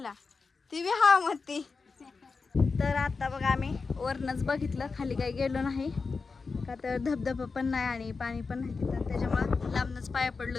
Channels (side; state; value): right; quieter; 4.5 dB